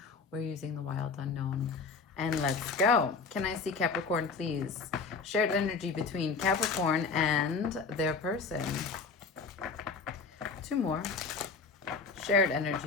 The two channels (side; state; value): right; quieter; 4.7 dB